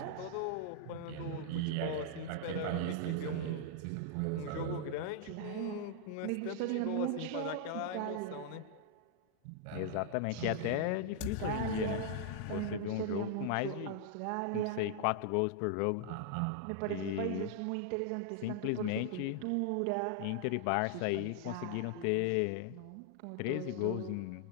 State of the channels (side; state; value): both; different; correlation -0.01